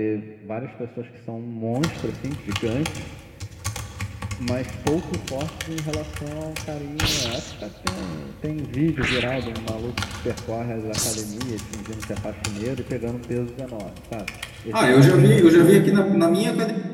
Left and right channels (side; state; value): both; identical; correlation 1.00